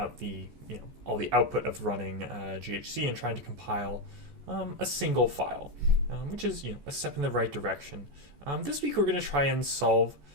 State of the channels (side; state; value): left; late; 14 ms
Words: the all the output of running GHC and trying to compile a single file, which is a step in the right direction. This week we're going to try and solve